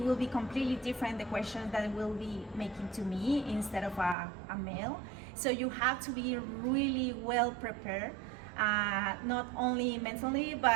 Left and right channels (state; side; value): drops out; left; at 4.2 s